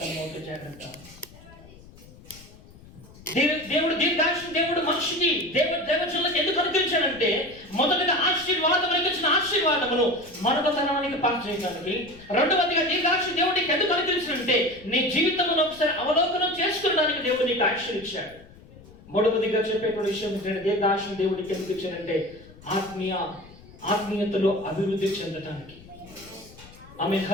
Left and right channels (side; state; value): left; noise; rumble, 21 dB below the sound